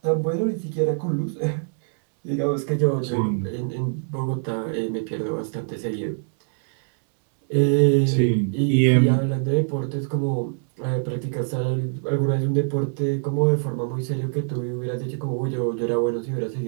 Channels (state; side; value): silent; left; digital silence